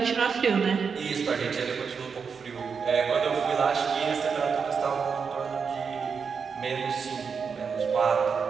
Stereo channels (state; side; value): quieter; left; 5.9 dB